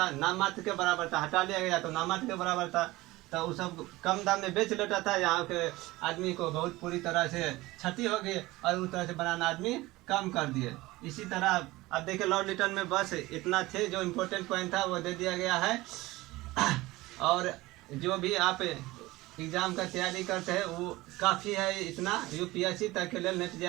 नाम मात्र के बराबर था। हटा लिया गया तो नाम मात्र के बराबर था, तो वो सब कम दाम में बेच लेता था। यहाँ के आदमी को बहुत पूरी तरह से क्षति हो गई और उस तरह से बनाना आदमी कम कर दिए। इसी तरह अब देखिए लॉर्ड लिटन में बस इतना थे, जो इम्पोर्टेंट पॉइंट था वो दे दिया गया है। और जो भी आप एग्ज़ाम का तैयारी करते हैं वो काफ़ी है, इतना यूपीएससी तक के लिए नेट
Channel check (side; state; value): left; quieter; 19.4 dB